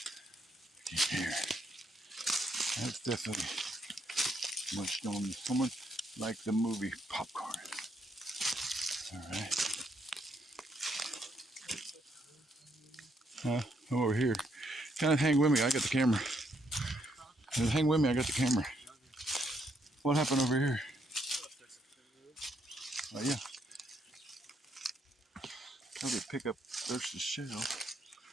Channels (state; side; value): normal; both; correlation 0.74